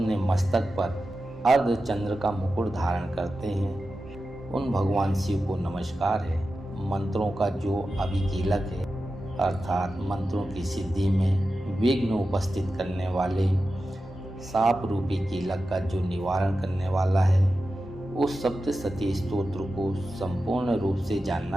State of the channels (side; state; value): both; normal; correlation 0.92